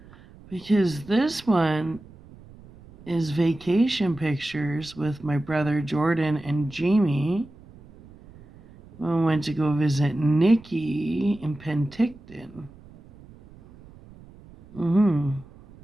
Because this one is vacation pictures with my brother Jordan and Jamie. We went to go visit Nikki in Penticton.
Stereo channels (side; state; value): right; noise; rumble, 22 dB below the sound